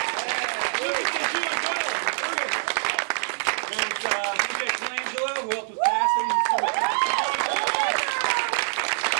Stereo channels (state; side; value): silent; left; digital silence